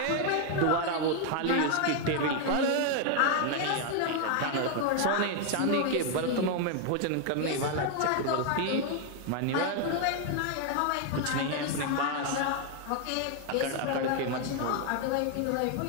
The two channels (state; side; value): different; both; correlation 0.00